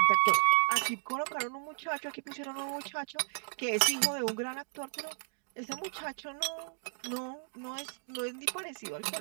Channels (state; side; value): silent; left; digital silence